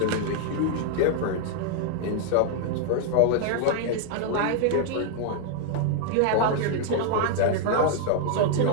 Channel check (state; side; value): different; both; correlation 0.00